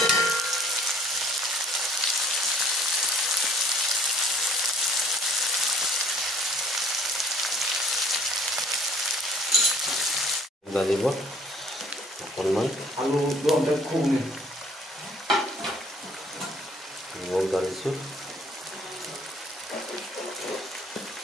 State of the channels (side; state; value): both; normal; correlation 0.57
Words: डालिব অকণমান আলু দমতে খুবনি Ngol dalisu.